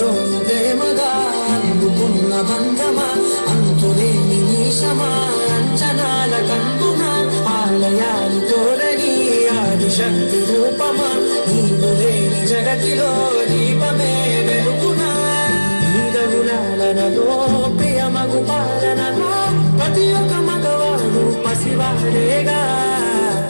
ప్రేమగా అందుకున్న బంధమా అంతులేని నీశమా అంచనాల కందున ఆలయాలు కోరని ఆదిశక్తి రూపమా నీవు లేని జగతిలో దీపమే వెలుగునా నీదగులాలనలో ప్రియమగు పాలనలో ప్రతి ఒక్క మగవాడు పసివాడేగా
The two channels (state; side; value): inverted; both; correlation -1.00